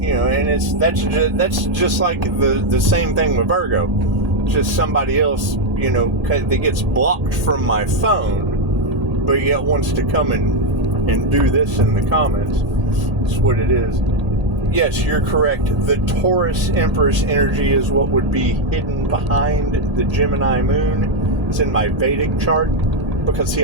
know, and that's just like the same thing with Virgo. Just somebody else, you know, that gets blocked from my phone, but yet wants to come and do this in the comments. That's what it is. Yes, you're correct. The Taurus Empress energy is what would be hidden behind the Gemini moon. It's in my Vedic chart, because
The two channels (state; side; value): late; left; 1.8 ms